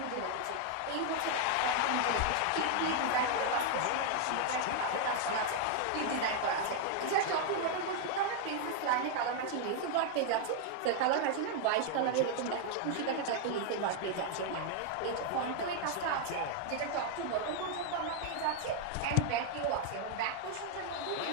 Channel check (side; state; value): both; different; correlation 0.00